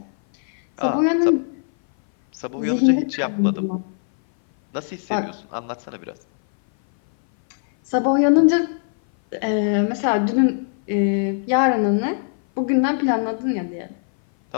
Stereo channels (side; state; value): right; silent; 58 dB below the other